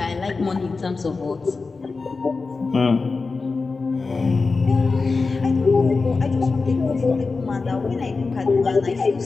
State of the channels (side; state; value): right; quieter; 4.1 dB